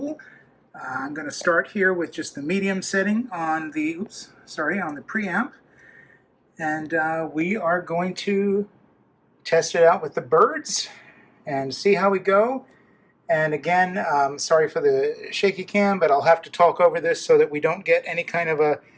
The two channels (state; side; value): identical; both; correlation 1.00